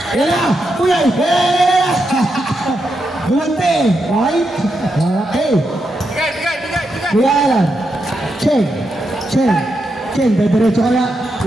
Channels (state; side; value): normal; both; correlation 0.84